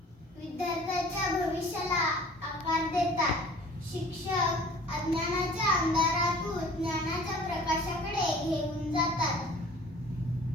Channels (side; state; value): both; normal; correlation 0.48